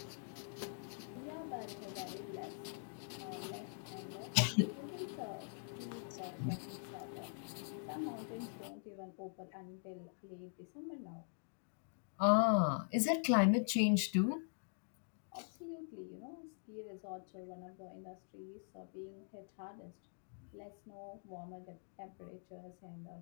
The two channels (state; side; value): silent; right; digital silence